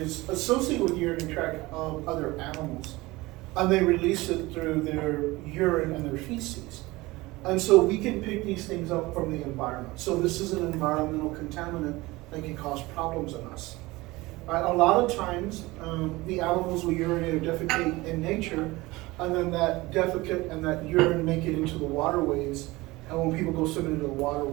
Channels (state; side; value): quieter; left; 20.8 dB